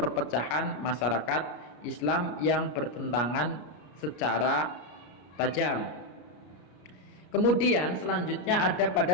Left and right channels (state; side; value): late; right; 33 ms